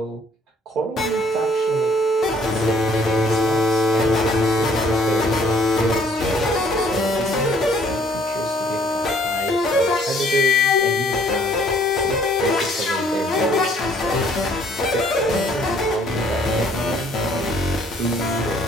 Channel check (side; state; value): both; normal; correlation 0.61